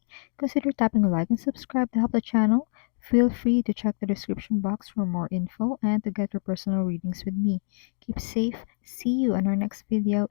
Consider tapping like and subscribe to help the channel. Feel free to check the description box for more info and to get your personal readings with me. Keep safe. See you in our next video.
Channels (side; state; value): right; silent; digital silence